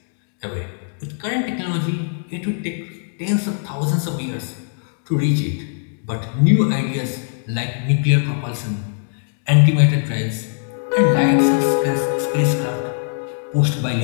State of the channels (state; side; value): silent; right; digital silence